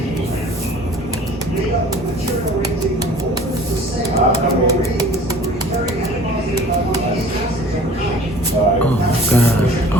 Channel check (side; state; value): both; normal; correlation 0.47